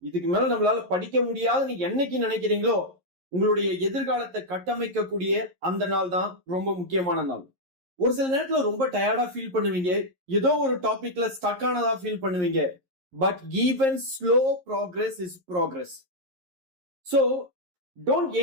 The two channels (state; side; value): late; left; 11 ms